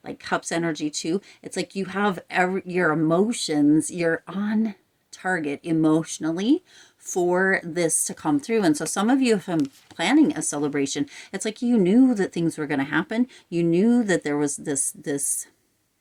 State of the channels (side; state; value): both; identical; correlation 1.00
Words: like Cups energy too. It's like you have your emotions, you're on target emotionally for this to come through. And so some of you have been planning a celebration. It's like you knew that things were going to happen. You knew that there was this